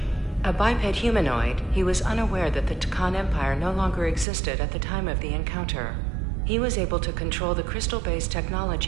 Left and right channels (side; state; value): left; drops out; at 4.2 s